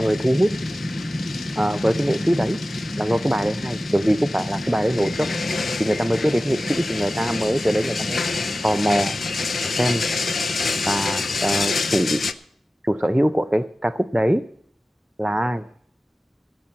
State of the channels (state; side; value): normal; both; correlation 0.96